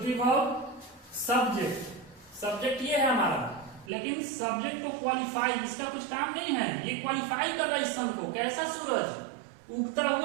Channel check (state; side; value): drops out; left; at 3.9 s